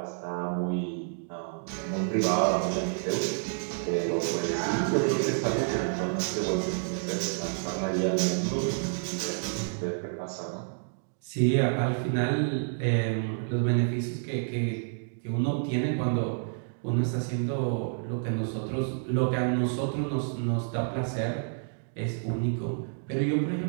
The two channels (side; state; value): left; silent; digital silence